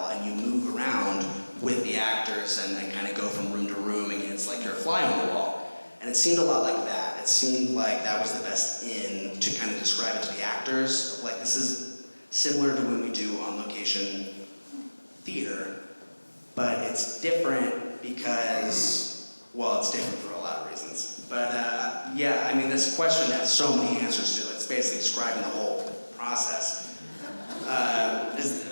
and you move around with the actors and then kind of go from room to room, and it's like you're a fly on the wall. And it seemed a lot like that. It seemed like that was the best in to kind of describe it to the actors. Like this is similar to when we do on-location theater, but it's different because, well, it's different for a lot of reasons. But yeah, I mean, this question has so many answers to it. It's basically describing the whole process.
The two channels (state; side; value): inverted; both; correlation -1.00